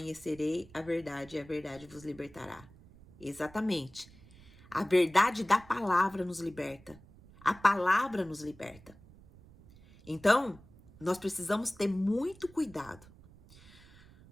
a verdade e a verdade vos libertará. Exatamente. A verdade da palavra nos liberta. A palavra nos liberta. Então, nós precisamos ter muito cuidado.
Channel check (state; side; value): noise; right; rumble, 23 dB below the sound